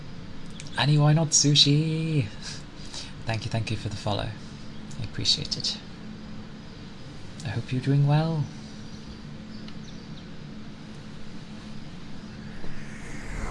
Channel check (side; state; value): both; identical; correlation 1.00